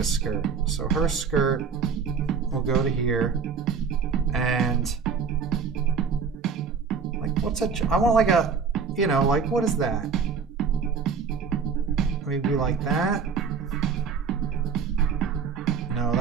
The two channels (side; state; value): left; quieter; 6.0 dB